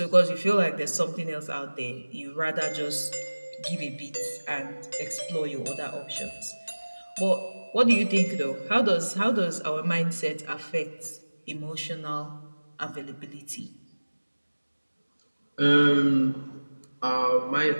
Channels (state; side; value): inverted; both; correlation -1.00